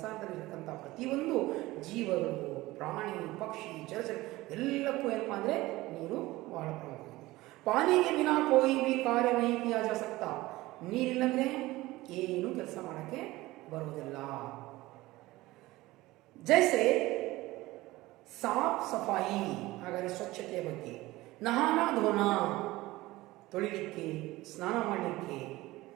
ಪ್ರತಿಯೊಂದು ಜೀವಗಳು, ಪ್ರಾಣಿ, ಪಕ್ಷಿ, ಜಲಚರ ಎಲ್ಲಕ್ಕೂ ಏನಪ್ಪಾ ಅಂದ್ರೆ ನೀರು ಬಹಳ ಪ್ರಮುಖ। पानी के बिना कोई भी कार्य नहीं किया जा सकता। ನೀರಿಲ್ಲಂದ್ರೆ ಏನು ಕೆಲಸ ಮಾಡಕ್ಕೆ ಬರುವುದಿಲ್ಲ। जैसे साफ सफाई, ಹಾಗಾದರೆ ಸ್ವಚ್ಛತೆಯ ಬಗ್ಗೆ, ನಹಾನಾ ಧೋನಾ ತೊಳಿಲಿಕ್ಕೆ, ಸ್ನಾನ ಮಾಡಲಿಕ್ಕೆ,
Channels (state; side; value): quieter; left; 18.8 dB